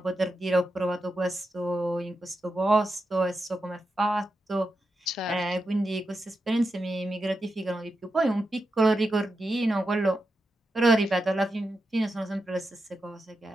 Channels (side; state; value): both; normal; correlation 0.88